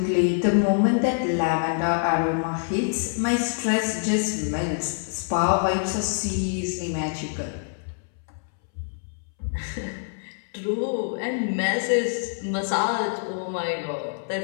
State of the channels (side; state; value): right; silent; 61 dB below the other